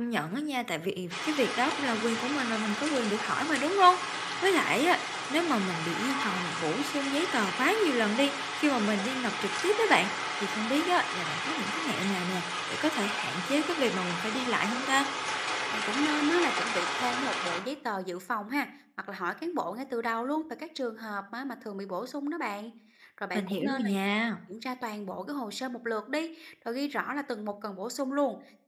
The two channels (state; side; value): identical; both; correlation 1.00